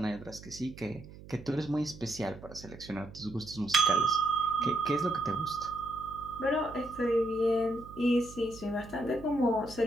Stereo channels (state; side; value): noise; right; hum, 17 dB below the sound